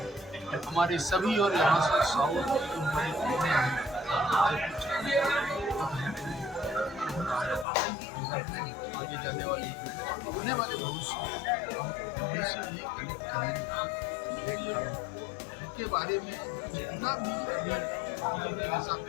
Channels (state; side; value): drops out; right; at 7.7 s